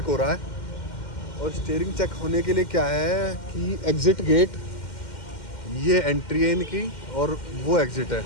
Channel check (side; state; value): right; late; 2.1 ms